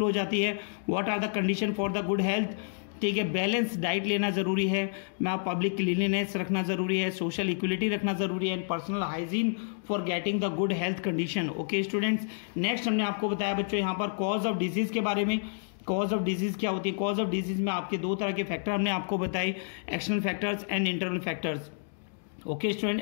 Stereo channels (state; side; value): silent; right; digital silence